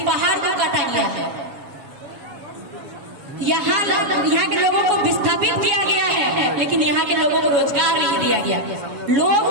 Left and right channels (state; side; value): late; left; 7.2 ms